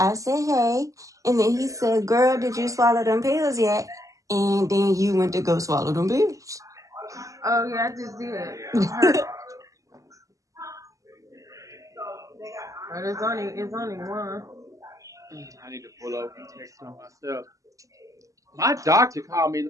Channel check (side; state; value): left; late; 0.16 ms